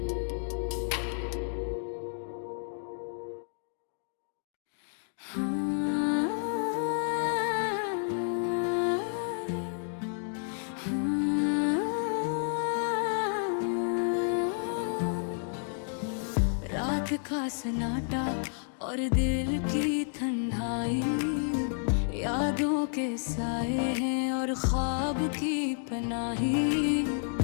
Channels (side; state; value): right; silent; 57 dB below the other